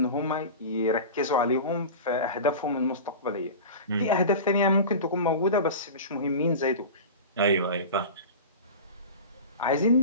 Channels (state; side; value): inverted; both; correlation -0.30